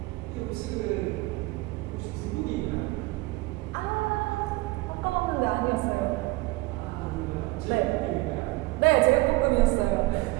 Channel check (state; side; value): quieter; left; 21.6 dB